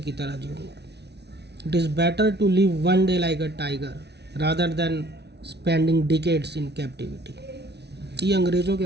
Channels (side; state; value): left; late; 0.49 ms